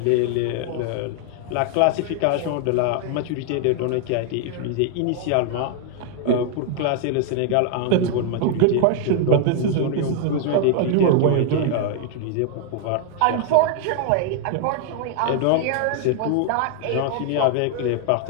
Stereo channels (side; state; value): both; different; correlation 0.00